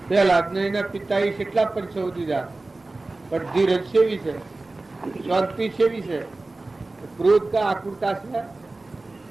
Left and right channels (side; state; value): left; quieter; 3.1 dB